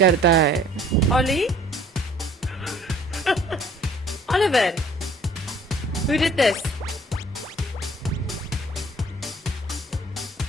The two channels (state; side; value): normal; both; correlation 0.55